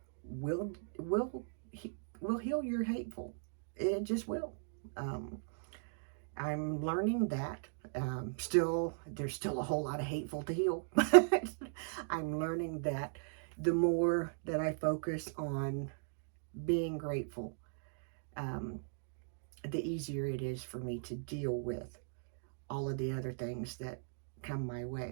will will will heal your hateful. It just will. Um, I'm learning that. There's still a whole lot of hateful to heal, but I'm learning that the more that I focus on being grateful, um, the easier it is for me to deal with all of the other things that come my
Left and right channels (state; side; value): silent; left; digital silence